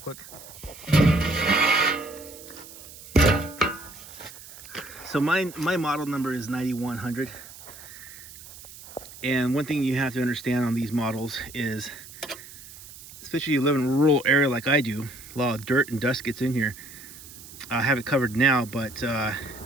So my model number is 9100. And one thing you have to understand on these models is, especially if you live in a rural area like I do, a lot of dirt and dust gets in here. I have it covered now, but I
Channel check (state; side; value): noise; right; hiss, 17 dB below the sound